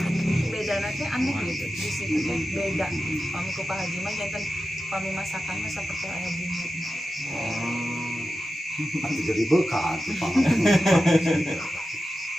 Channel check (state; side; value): normal; both; correlation 0.92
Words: Bedana teh aneh gitu di situ teh beda. Pami ku Pak Haji mah janten pami masakan mah saperti aya bumbu. Atuh jadi bekal tuh Pak.